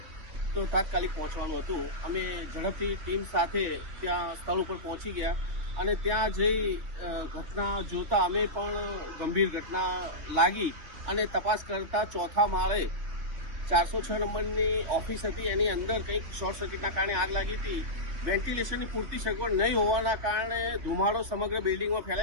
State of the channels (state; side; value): late; left; 3.2 ms